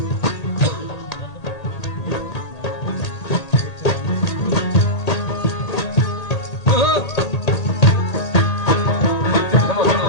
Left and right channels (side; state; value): right; late; 1.8 ms